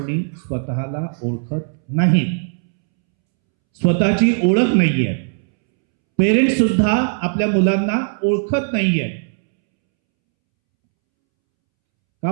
स्वतःला ओळखत नाही, स्वतःची ओळख नाहीये. पेरेंट्स सुद्धा आपल्या मुलांना ओळखत नाहीये. का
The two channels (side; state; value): left; silent; 67 dB below the other